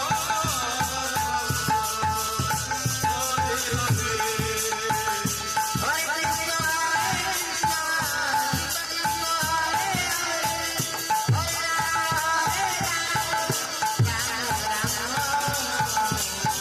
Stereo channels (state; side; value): identical; both; correlation 1.00